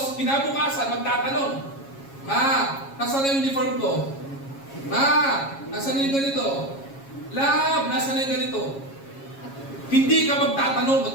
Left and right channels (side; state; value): right; late; 7.3 ms